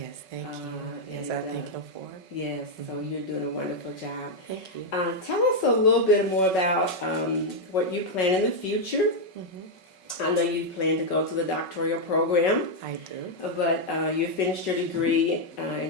thank you. Yes, I thank Him for it. Yes, so you're doing a wonderful job. Thank you. Tell us a little bit more about what you plan in the future. I know you plan to go to the doctoral program. I do. But you finished your degree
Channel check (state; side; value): late; right; 5.4 ms